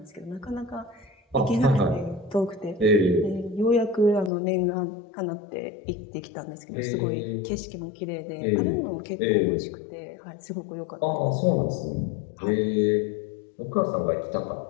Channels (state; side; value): drops out; right; at 4.3 s